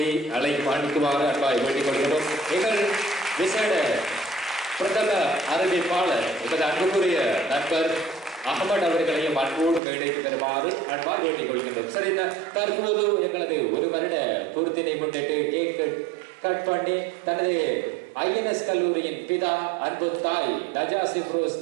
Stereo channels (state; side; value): drops out; left; at 9.8 s